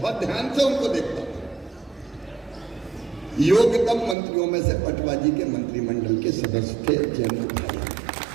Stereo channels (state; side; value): drops out; left; at 4.2 s